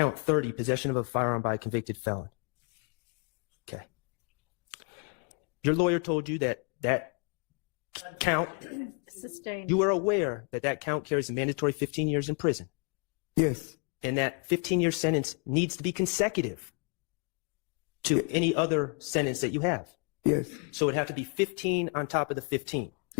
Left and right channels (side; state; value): right; quieter; 35.8 dB